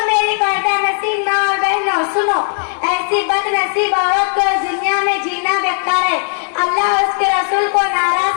मेरी पर्दा नसीब माँ और बहनों सुनो, ऐसी बदनसीब औरत को दुनिया में जीना बेकार है। अल्लाह उसके रसूल को नाराज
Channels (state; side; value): silent; right; 68 dB below the other